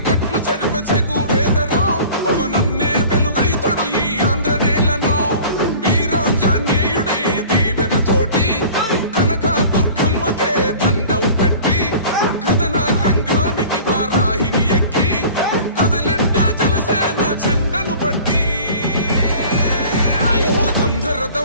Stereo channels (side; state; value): both; inverted; correlation -0.44